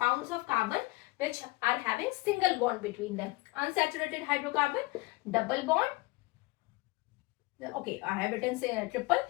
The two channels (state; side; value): quieter; right; 23.2 dB